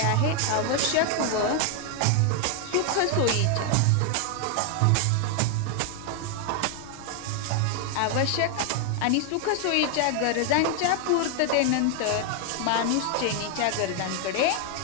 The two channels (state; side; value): different; both; correlation 0.00